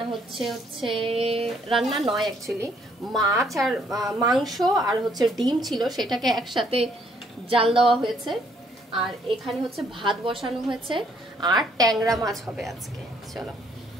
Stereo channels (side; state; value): both; normal; correlation 0.67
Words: হচ্ছে রান্না নয় অ্যাকচুয়ালি, মাছ আর মাংস আর হচ্ছে ডিম ছিল, সেটাকে একসাথে জাল দেওয়া হয়েছে। আর এখানে হচ্ছে ভাত বসানো হয়েছে আর ট্যাংরা মাছ হবে আজকে। চলো